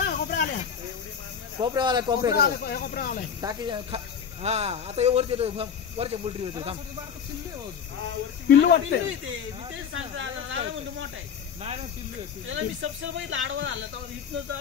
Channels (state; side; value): quieter; right; 7.3 dB